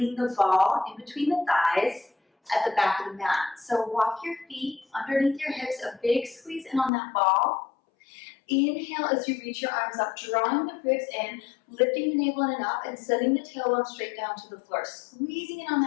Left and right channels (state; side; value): drops out; right; at 6.9 s